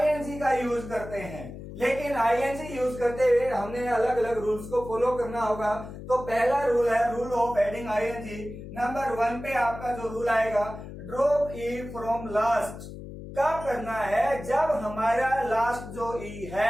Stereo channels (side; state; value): left; noise; hum, 12 dB below the sound